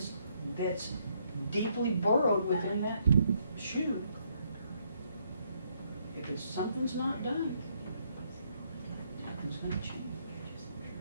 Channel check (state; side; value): inverted; both; correlation -0.72